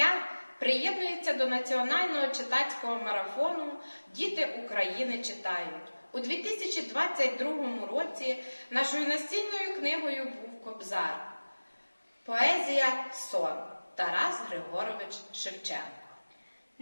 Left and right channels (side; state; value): both; inverted; correlation -1.00